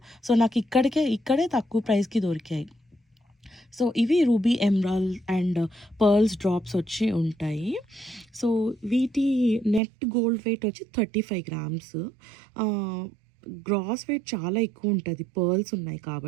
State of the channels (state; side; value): drops out; left; at 9.8 s